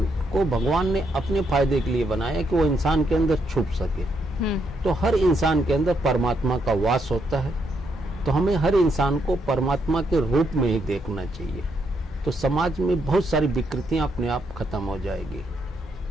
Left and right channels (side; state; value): both; normal; correlation 0.77